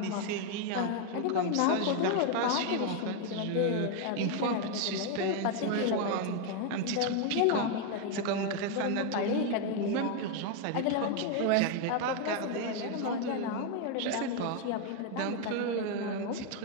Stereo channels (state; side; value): different; both; correlation 0.01